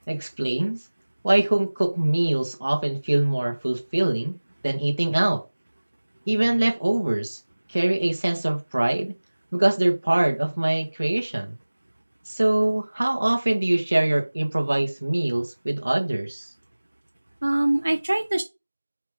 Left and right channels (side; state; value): both; inverted; correlation -1.00